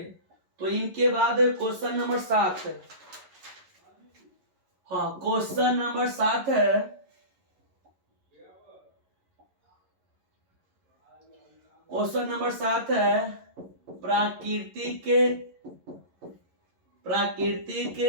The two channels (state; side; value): late; left; 11 ms